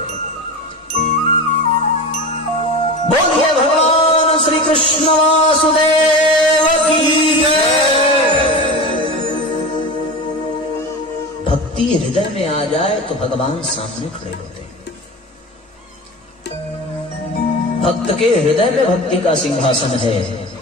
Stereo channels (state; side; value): normal; both; correlation 0.29